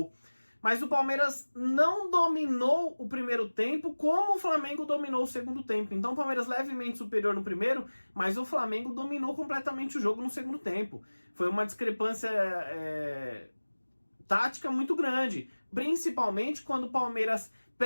Mas o Palmeiras não dominou o primeiro tempo como o Flamengo dominou o segundo tempo. Então o Palmeiras levemente superior no primeiro, mas o Flamengo dominou completamente o jogo no segundo tempo. Foi uma discrepância tática muito grande, principalmente quando o Palmeiras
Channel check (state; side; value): inverted; both; correlation -1.00